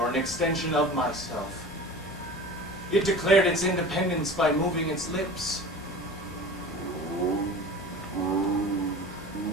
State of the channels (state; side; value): normal; both; correlation 0.36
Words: an extension of myself. It declared its independence by moving its lips.